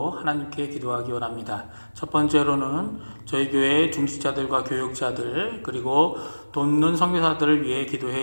하나님께 기도하기 원합니다. 첫 번째로는 저희 교회의 중직자들과 교육자들 그리고 돕는 선교사들을 위해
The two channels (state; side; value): inverted; both; correlation -1.00